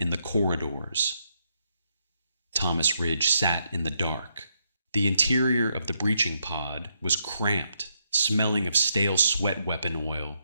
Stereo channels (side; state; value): both; inverted; correlation -0.78